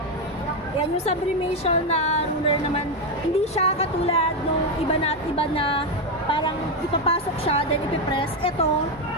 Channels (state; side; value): normal; both; correlation 0.08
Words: Yan yung sublimation na ruler naman. Hindi siya katulad nung iba na parang ipapasok siya, then ipipress. Ito,